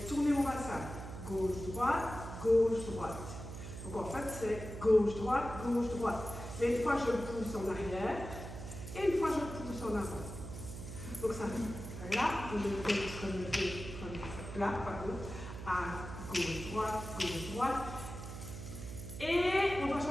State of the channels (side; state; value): right; noise; hum, 9 dB below the sound